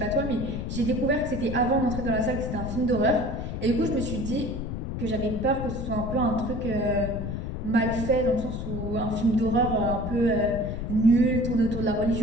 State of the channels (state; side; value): noise; left; rumble, 4 dB below the sound